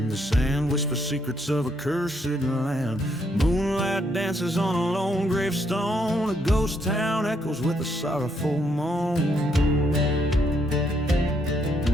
The sand whispers secrets of a cursed land. Moonlight dances on a lone gravestone. A ghost town echoes with a sorrowful moan.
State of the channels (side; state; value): both; normal; correlation 0.74